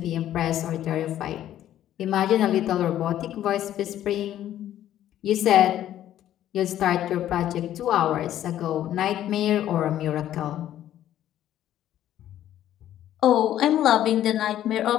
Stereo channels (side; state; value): right; quieter; 12.0 dB